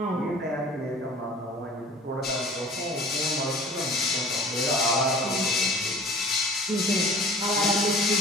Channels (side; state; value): both; normal; correlation 0.44